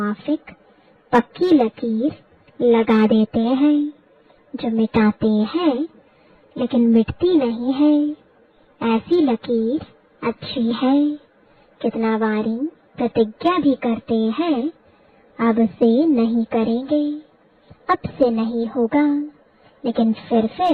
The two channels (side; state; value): both; identical; correlation 1.00